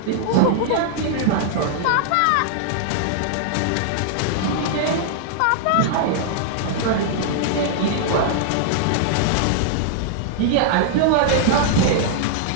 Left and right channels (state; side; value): different; both; correlation -0.01